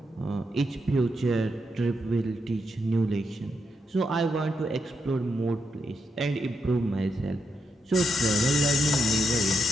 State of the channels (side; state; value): both; normal; correlation 0.81